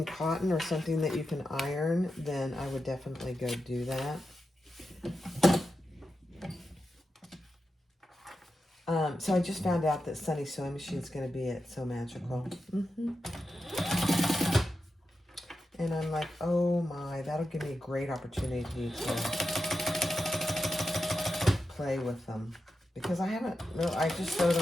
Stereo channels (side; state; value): both; normal; correlation 0.90